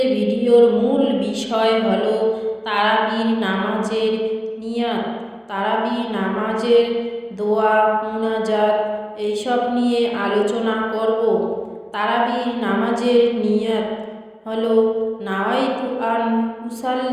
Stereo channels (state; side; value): identical; both; correlation 1.00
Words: ভিডিওর মূল বিষয় হলো তারাবির নামাজের নিয়াত, তারাবি নামাজের দোয়া মুনাজাত এইসব নিয়ে আলোচনা করব। তারাবির নামাজের নিয়াত হলো নাওয়াইতু আন